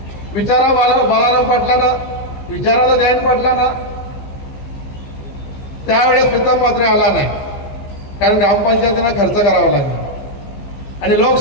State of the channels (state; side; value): late; right; 15 ms